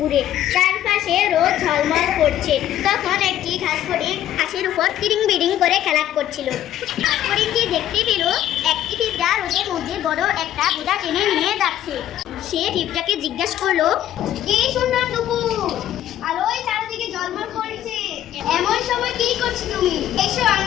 চারপাশে রোদ ঝলমল করছে। তখন একটি ঘাস ফড়িং ঘাসের উপর তিরিং বিরিং করে খেলা করছিল। ঘাস ফড়িংটি দেখতে পেল একটি পিঁপড়া রোদের মধ্যে বড় একটা বোঝা টেনে নিয়ে যাচ্ছে। সে পিঁপড়াকে জিজ্ঞাসা করলো, কি সুন্দর দুপুর, আলোয় চারদিকে ঝলমল করছে, এমন সময় কি করছো তুমি? এসো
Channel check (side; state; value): right; quieter; 12.0 dB